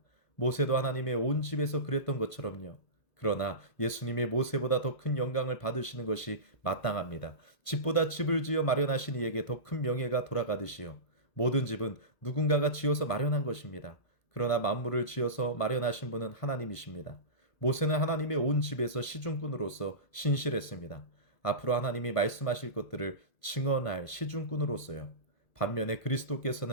모세도 하나님의 온 집에서 그랬던 것처럼요. 그러나 예수님이 모세보다 더 큰 영광을 받으시는 것이 마땅합니다. 집보다 집을 지어 마련하신 이에게 더 큰 명예가 돌아가듯이요. 모든 집은 누군가가 지어서 마련한 것입니다. 그러나 만물을 지어서 마련하신 분은 하나님이십니다. 모세는 하나님의 온 집에서 시중꾼으로서 신실했습니다. 앞으로 하나님이 말씀하실 것들을 증언할 시중꾼으로서요. 반면에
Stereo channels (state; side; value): late; right; 2.0 ms